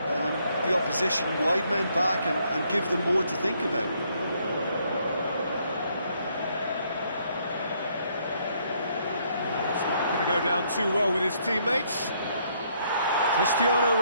opposition wide men back and give them more to think about. Well, that's not going to go down too well with his teammates. Cristiano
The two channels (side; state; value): both; inverted; correlation -0.70